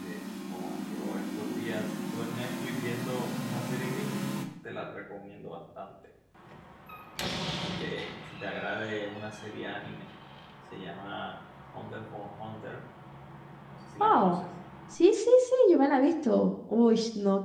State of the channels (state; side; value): identical; both; correlation 1.00